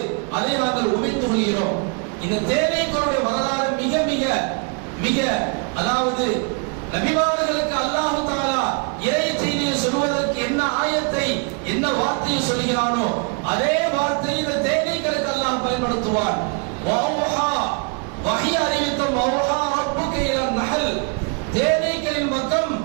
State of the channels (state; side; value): quieter; left; 36.5 dB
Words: அதை நாங்கள் உமிழ்ந்து கொள்கிறோம். இந்த தேனீக்களுடைய வரலாறு மிக மிக மிக அதாவது நபிமார்களுக்கு அல்லாஹ் தஆலா இறை செய்தியை சொல்வதற்கு என்ன ஆயத்தை என்ன வார்த்தையை சொல்கிறானோ அதே வார்த்தையை இந்த தேனீக்களுக்கு அல்லாஹ் பயன்படுத்துவார். வௌஹா வஹி அறிவித்தம் வௌஹா ரப்புக இலா நஹல், தேனீக்களின் பக்கம்